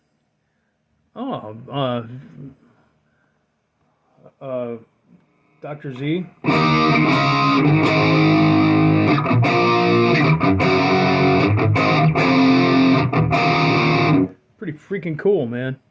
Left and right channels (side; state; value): both; identical; correlation 1.00